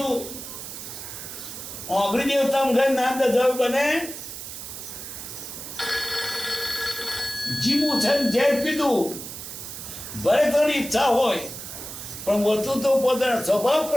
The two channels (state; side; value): noise; right; hiss, 10 dB below the sound